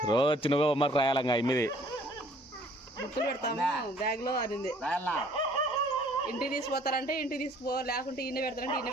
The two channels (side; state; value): both; normal; correlation 0.57